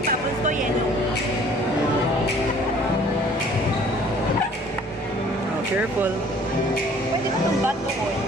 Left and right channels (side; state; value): both; normal; correlation 0.54